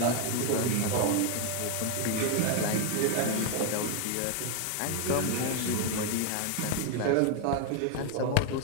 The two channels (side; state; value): both; different; correlation 0.01